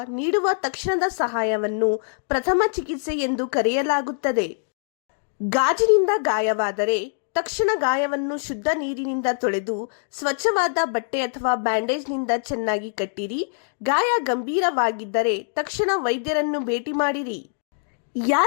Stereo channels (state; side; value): silent; right; digital silence